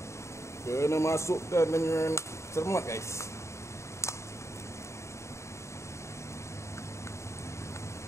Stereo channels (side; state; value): right; late; 0.14 ms